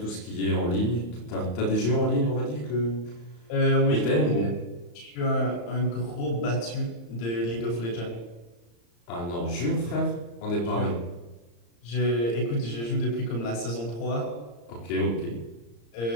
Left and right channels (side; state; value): right; late; 34 ms